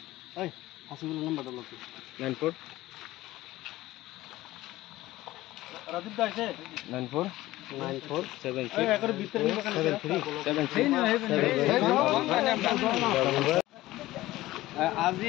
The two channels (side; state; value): right; quieter; 16.9 dB